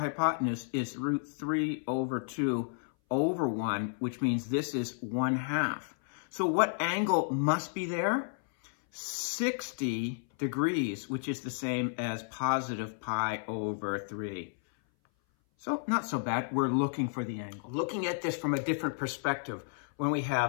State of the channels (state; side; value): silent; right; 56 dB below the other